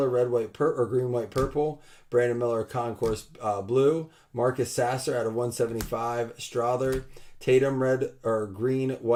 red, white, or green, white, purple. Brandon Miller concourse blue. Marcus Sasser out of 175. Strother. Tatum red or green,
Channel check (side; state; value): both; identical; correlation 1.00